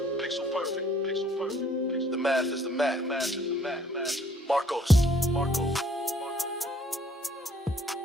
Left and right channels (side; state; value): both; normal; correlation 0.61